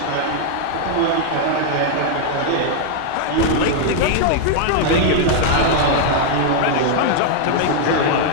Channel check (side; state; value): both; different; correlation 0.00